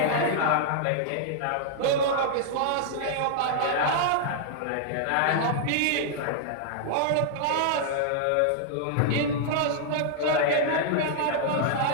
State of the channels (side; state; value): both; different; correlation -0.01